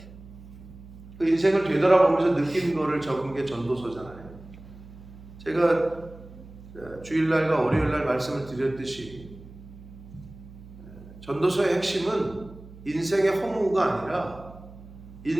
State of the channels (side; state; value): right; noise; hum, 18 dB below the sound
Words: 그 인생을 되돌아보면서 느낀 거를 적은 게 전도서잖아요. 제가 주일날과 월요일날 말씀을 드렸듯이 전도서의 핵심은 인생의 허무가 아니라